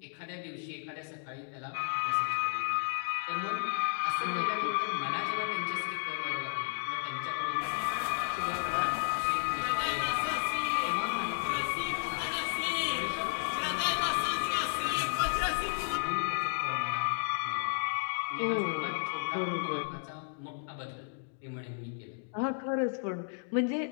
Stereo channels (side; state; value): right; silent; digital silence